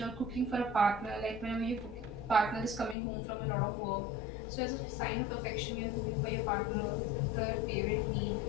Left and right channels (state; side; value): drops out; right; at 3.0 s